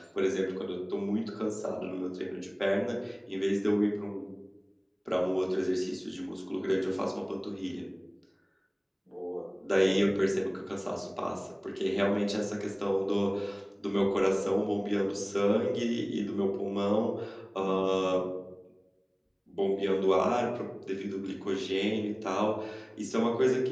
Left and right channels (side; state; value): both; identical; correlation 1.00